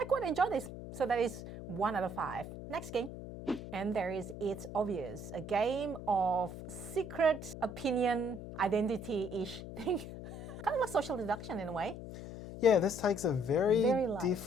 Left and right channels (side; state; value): left; noise; hum, 10 dB below the sound